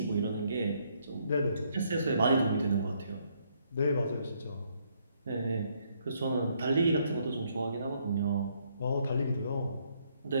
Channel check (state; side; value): inverted; both; correlation -0.71